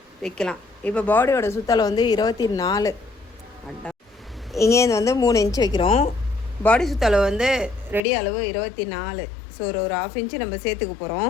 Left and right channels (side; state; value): right; drops out; at 8.0 s